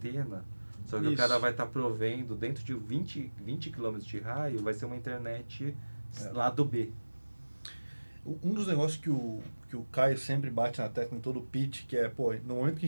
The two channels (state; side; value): inverted; both; correlation -1.00